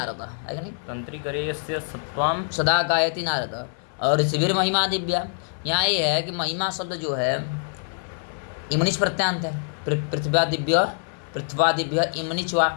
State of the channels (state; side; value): silent; right; 57 dB below the other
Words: है कि नहीं? तंत्री करेयस्य सत्वाम सदा गायति नारद। और शिविर महिमा दिव्या, यहाँ ये है कि महिमा शब्द जो है इमनिच प्रत्यांत है। पृथ्वा दिव्य इमनिचवा